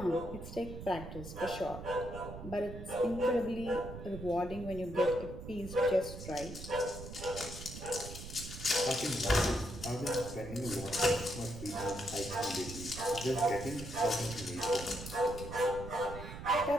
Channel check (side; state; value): right; noise; rumble, 10 dB below the sound